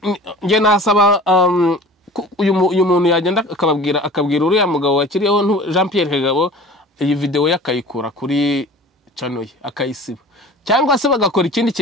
nge nasaba uyu muntu yagenda akabwira uriya mugabo wakiriyeho Jean Pierre Kagabo iyi video yakayikura kuri channel ye akayisiba cyangwa se bagakora ikindi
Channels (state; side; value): normal; both; correlation 0.42